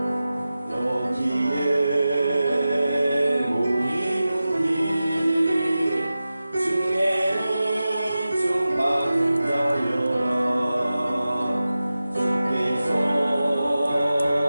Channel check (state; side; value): inverted; both; correlation -0.94